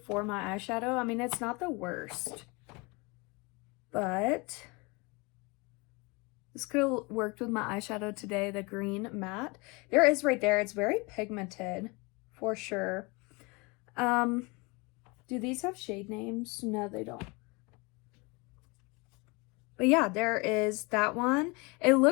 my eyeshadow. I mean, it's not the worst, but this could have worked with my eyeshadow today, the green matte. There is right there. It's very pigmented for sure. Do these have shade names? No, they don't. But yeah, there is that one. It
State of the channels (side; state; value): right; quieter; 27.4 dB